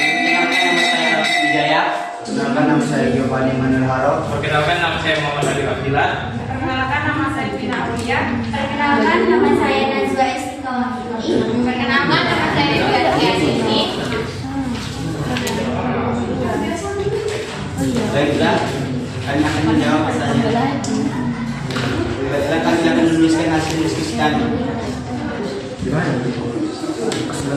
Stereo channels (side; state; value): both; identical; correlation 1.00